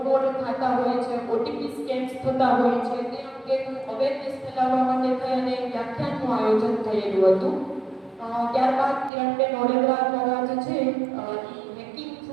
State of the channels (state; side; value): drops out; left; at 9.1 s